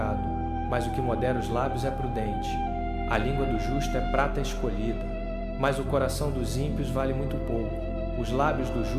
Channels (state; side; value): identical; both; correlation 1.00